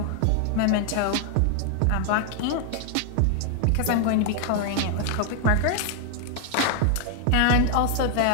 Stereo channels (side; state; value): both; different; correlation 0.00